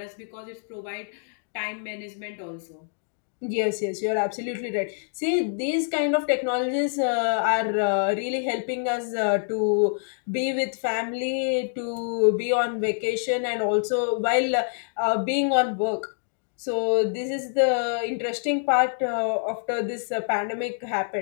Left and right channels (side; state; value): right; silent; digital silence